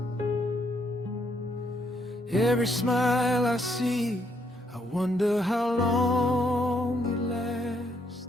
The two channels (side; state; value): both; normal; correlation 0.73